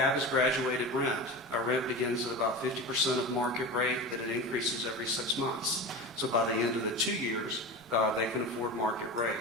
is graduated rent. Our rent begins at about 50% of market rate, that it increases every 6 months. So by the end of the 2 years, they can afford market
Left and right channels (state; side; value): normal; both; correlation 0.28